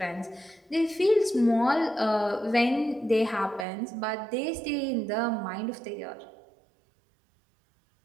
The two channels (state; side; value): drops out; left; at 3.7 s